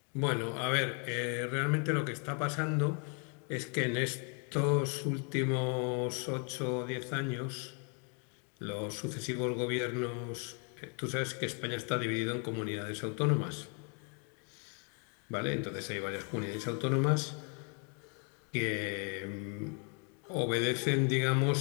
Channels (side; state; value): right; quieter; 38.5 dB